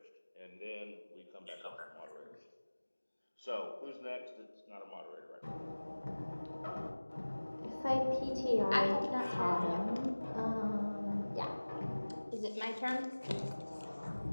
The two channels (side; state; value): both; inverted; correlation -1.00